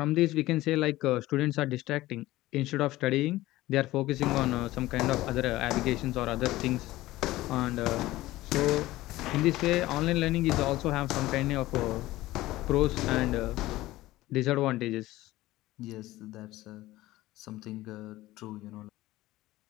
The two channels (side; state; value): right; quieter; 17.2 dB